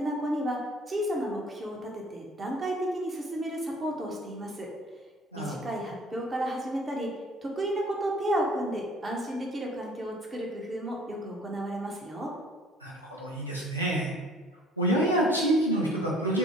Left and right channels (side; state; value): both; normal; correlation 0.52